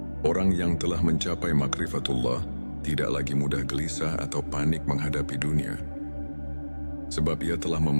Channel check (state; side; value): inverted; both; correlation -1.00